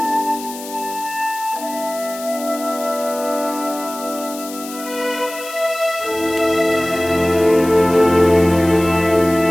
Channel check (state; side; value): noise; left; hiss, 13 dB below the sound